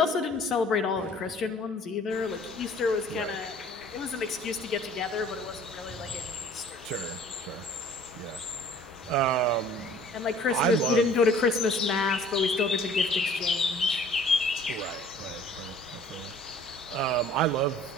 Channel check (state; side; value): normal; both; correlation 0.52